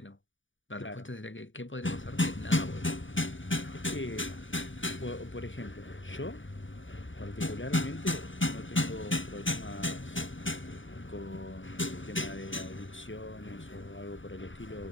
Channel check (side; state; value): right; late; 0.56 ms